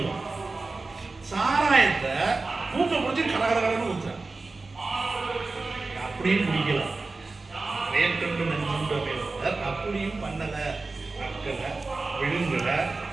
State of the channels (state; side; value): quieter; left; 3.6 dB